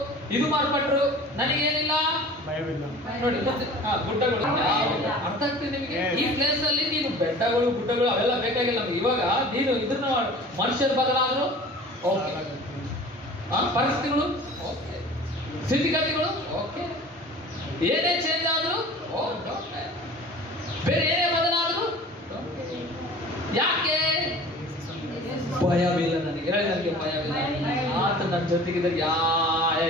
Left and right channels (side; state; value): both; normal; correlation 0.43